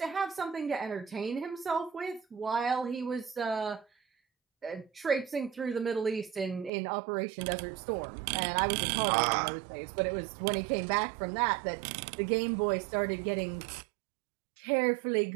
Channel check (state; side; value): drops out; left; at 6.7 s